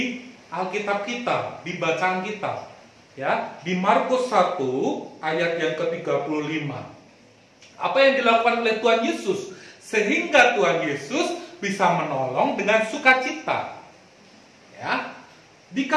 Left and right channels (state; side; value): identical; both; correlation 1.00